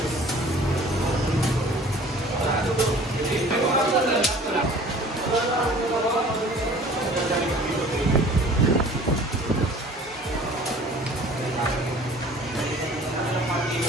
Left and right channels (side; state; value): both; normal; correlation 0.48